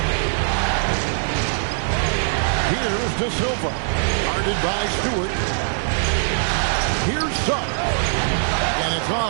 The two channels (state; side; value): silent; left; digital silence